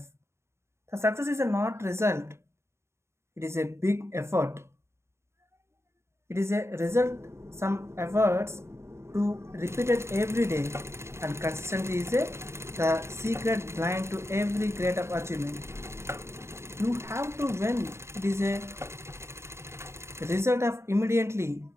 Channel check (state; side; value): late; left; 0.13 ms